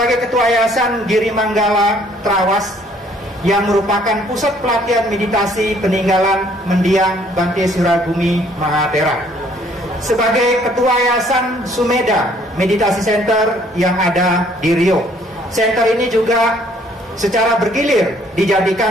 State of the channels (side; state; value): both; normal; correlation 0.61